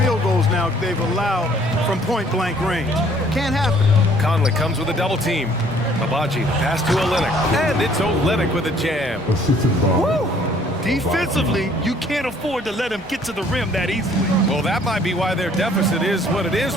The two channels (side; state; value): both; normal; correlation 0.59